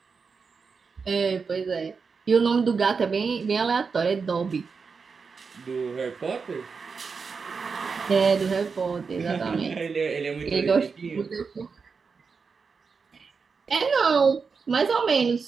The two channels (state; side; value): quieter; left; 5.2 dB